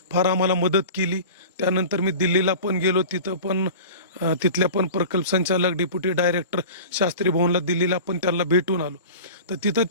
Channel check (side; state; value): both; inverted; correlation -0.37